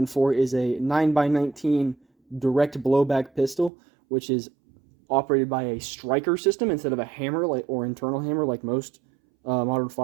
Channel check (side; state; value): left; drops out; at 3.7 s